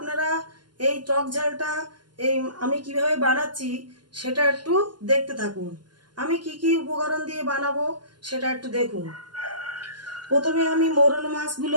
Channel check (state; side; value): late; left; 0.71 ms